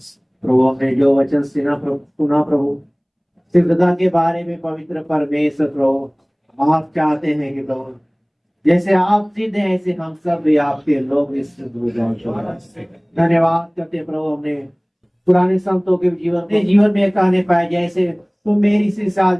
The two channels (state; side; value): identical; both; correlation 1.00